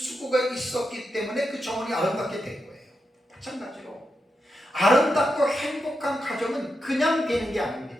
있었기 때문에 그 정원이 아름답게 된 거예요. 마찬가지로 아름답고 행복한 가정은 그냥 되는 게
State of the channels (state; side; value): normal; both; correlation 0.86